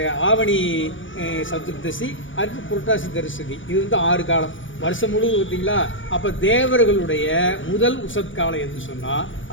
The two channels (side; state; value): right; late; 0.56 ms